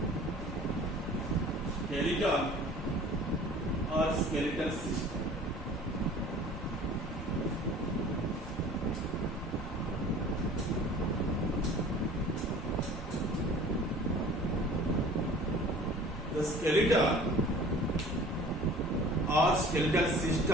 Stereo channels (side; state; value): both; normal; correlation 0.46